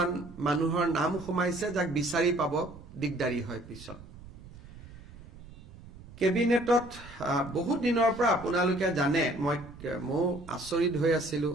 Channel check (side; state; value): right; noise; rumble, 17 dB below the sound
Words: মানুহৰ নাম সোমাইছে যাক বিচাৰি পাব দিগদাৰি হয় পিছত কেবিনেটত বহুত দিনৰ পৰা আপোনালোকে জানে মই আচৰিত হৈ আছিলো